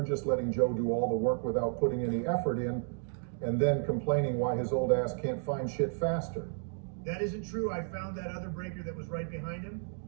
just letting Joe do all the work without putting any effort in and then complaining why his old ass can't find shit faster. That isn't true. I found that other breaker that was right behind him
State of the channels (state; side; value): silent; left; 56 dB below the other